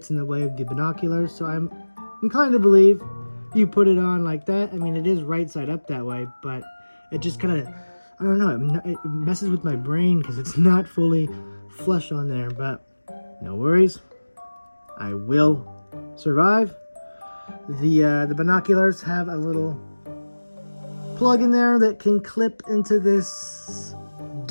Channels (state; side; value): inverted; both; correlation -1.00